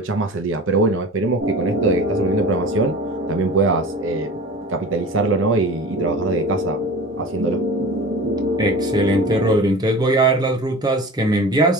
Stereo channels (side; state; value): both; normal; correlation 0.36